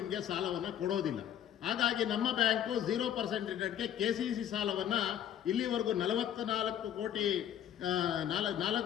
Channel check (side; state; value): right; quieter; 10.2 dB